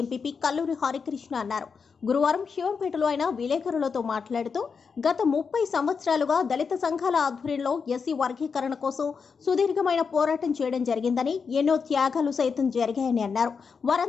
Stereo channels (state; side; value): quieter; right; 5.6 dB